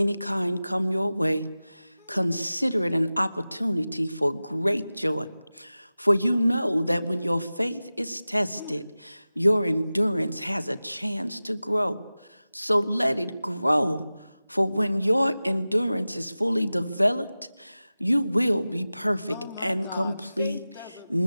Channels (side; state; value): both; inverted; correlation -0.96